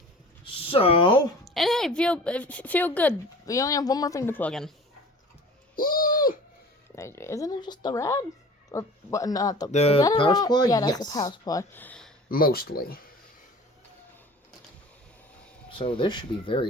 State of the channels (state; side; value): normal; both; correlation 0.42